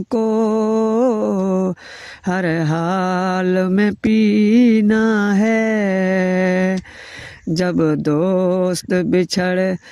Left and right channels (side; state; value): both; identical; correlation 1.00